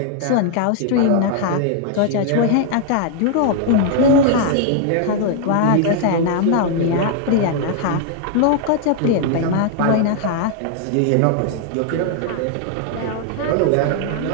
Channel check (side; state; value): both; different; correlation 0.00